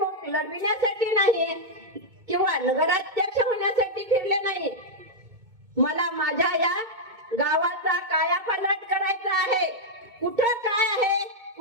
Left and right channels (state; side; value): late; left; 2.2 ms